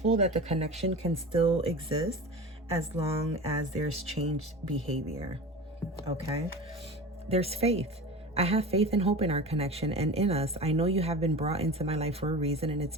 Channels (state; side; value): normal; both; correlation 0.32